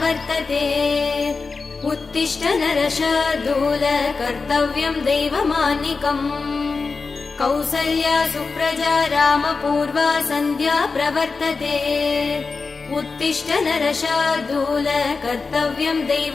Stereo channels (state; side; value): quieter; right; 4.4 dB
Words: उत्तिष्ठ नरशार्दूल कर्तव्यं दैवमान्निकम् कौसल्या सुप्रजा रामपूर्वा सन्ध्या प्रवर्तते उत्तिष्ठ नरशार्दूल कर्तव्यं